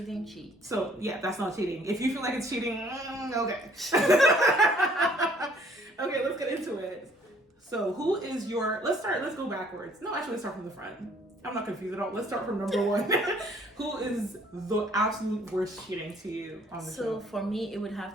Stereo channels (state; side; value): normal; both; correlation 0.60